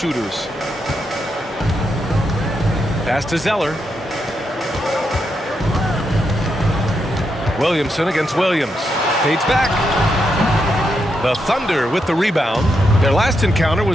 Pass to Zeller. Williamson against Williams. Fades back. The Thunder with the rebound. Their last encounter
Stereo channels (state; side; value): normal; both; correlation 0.82